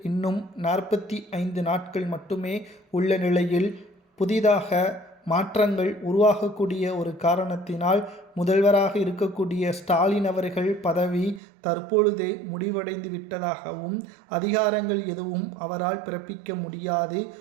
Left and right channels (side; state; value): left; drops out; at 11.4 s